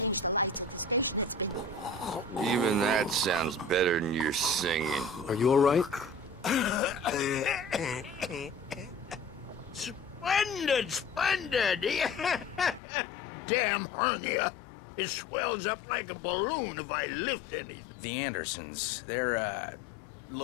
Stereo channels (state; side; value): drops out; right; at 12.8 s